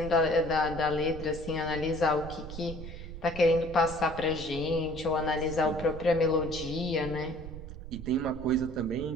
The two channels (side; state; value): right; noise; rumble, 11 dB below the sound